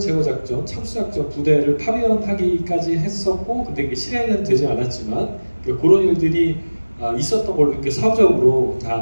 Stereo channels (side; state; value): both; inverted; correlation -1.00